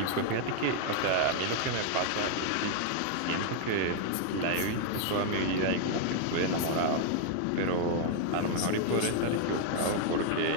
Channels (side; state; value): both; different; correlation 0.00